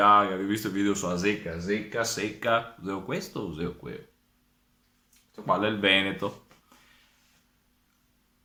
ho visto il video sulla zecca, zecca, secca, useo questo o useo quello? Questo qua è il Veneto.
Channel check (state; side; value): identical; both; correlation 1.00